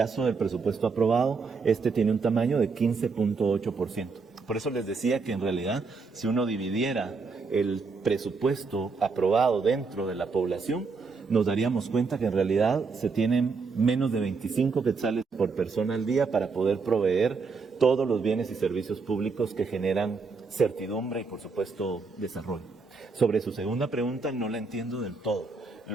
del presupuesto aprobado, este tiene un tamaño de 15.8%. Por eso les decía que en realidad, si uno dividiera el presupuesto aprobado dentro de la población, nos daríamos cuenta que en realidad se tienen menos de 25 quetzales por persona al día para poder proveer todos los bienes y servicios públicos que generan certidumbre y, por supuesto, desarrollo. Sobre su segunda pregunta, no la entiendo del todo.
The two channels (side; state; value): left; quieter; 4.6 dB